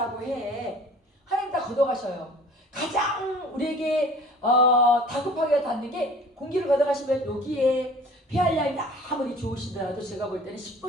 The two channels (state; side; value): normal; both; correlation 0.47